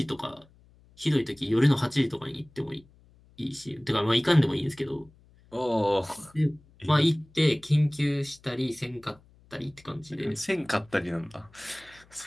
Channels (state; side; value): noise; left; hum, 28 dB below the sound